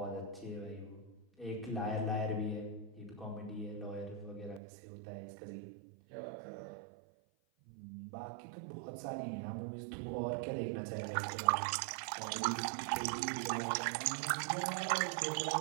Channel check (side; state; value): left; drops out; at 4.6 s